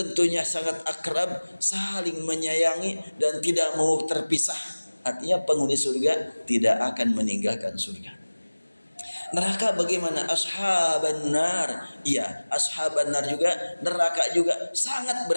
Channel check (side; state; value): both; inverted; correlation -1.00